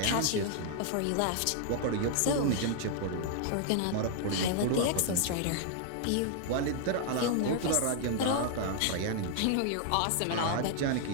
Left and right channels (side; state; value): both; different; correlation 0.00